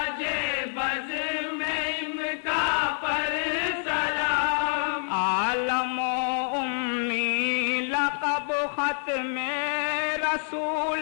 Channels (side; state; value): right; silent; 60 dB below the other